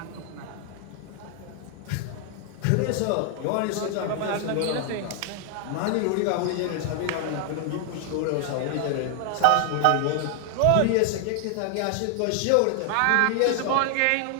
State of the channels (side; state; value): both; different; correlation 0.00